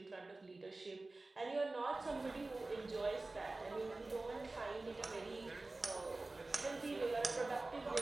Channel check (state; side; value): quieter; left; 3.1 dB